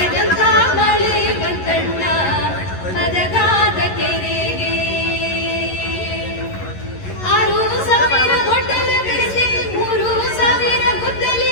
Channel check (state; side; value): late; right; 11 ms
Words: ಮಳೆ ಬಂತಣ್ಣ ಮದಗಾದ ಕೆರೆಗೆ, 6,000 ಗೊಡ್ಡಲ ಬೆರೆಸಿ 3,000 ಗುದ್ದಲಿ